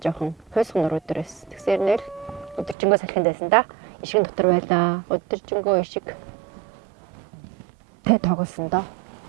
хойсгон нөрөөдрөөс. Тэгсээр нэр өдөржингөө салхинд байсан да. Ишгэн дотор байлаа. Өдөржингөө ишиг тэ тоглосон доо.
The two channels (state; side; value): drops out; left; at 2.8 s